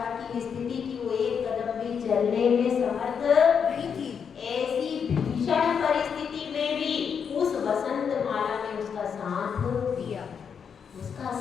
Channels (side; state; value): right; quieter; 6.9 dB